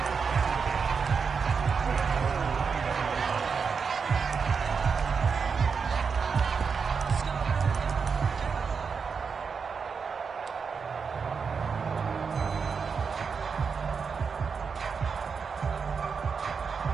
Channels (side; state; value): left; quieter; 5.7 dB